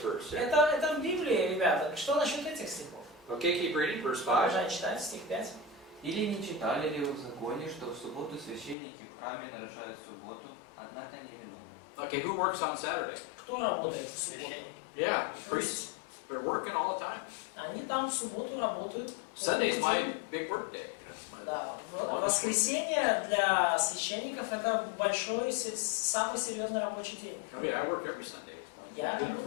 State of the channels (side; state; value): right; drops out; at 8.8 s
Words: verse? Это в Библии, ребята. Что насчет этих стихов? Okay, keep reading, verse 5. Продолжай читать, стих 5. Или не читали ли вы в законе, что в субботу священники в храме нарушают субботу, однако не виновны? Okay, who works on Saturday? Кто работает в субботу? Yeah, priests. They're working all the time. Они там в субботу работают. Sunday's my big work day. Да, воскресенье для священников это большой, самый серьезный рабочий день. I mean, I work every Sunday. Я I've done it